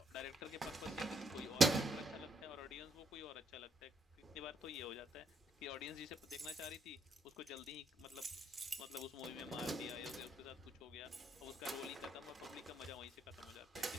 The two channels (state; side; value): normal; both; correlation 0.74